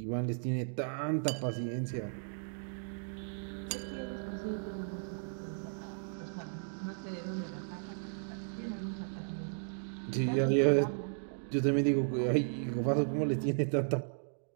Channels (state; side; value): silent; left; digital silence